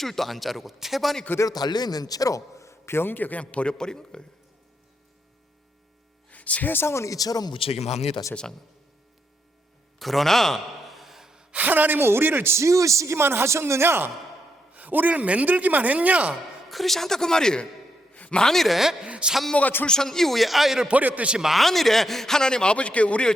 안 자르고 태반이 그대로 달려있는 채로 변기에 그냥 버려버린 거예요. 세상은 이처럼 무책임합니다. 세상은. 그러나 하나님은 우리를 지으시기만 하셨느냐, 우리를 만들기만 했냐? 그렇지 않다 그 말이에요. 만일에 산모가 출산 이후에 아이를 버렸듯이, 만일에 하나님 아버지께 우리를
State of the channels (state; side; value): normal; both; correlation 0.79